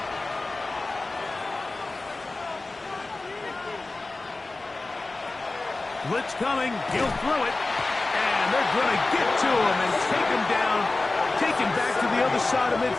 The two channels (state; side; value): quieter; right; 3.2 dB